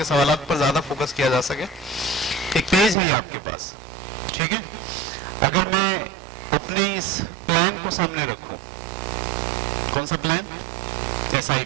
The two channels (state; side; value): drops out; left; at 3.0 s